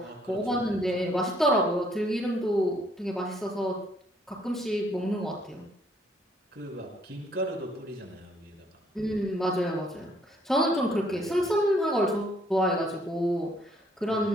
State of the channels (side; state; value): both; normal; correlation 0.66